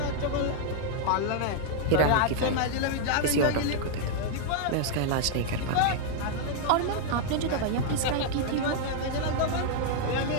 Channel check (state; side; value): different; both; correlation 0.00